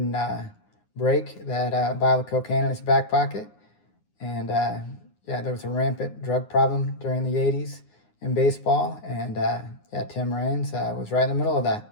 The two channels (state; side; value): late; right; 9.7 ms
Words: break that vial of cocaine in his back pocket. And there was a rampant drug problem during the 80s in baseball, and Tim Raines was right in the middle of that.